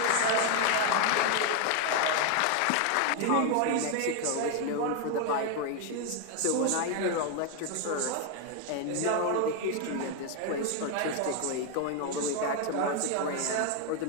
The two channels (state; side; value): different; both; correlation 0.01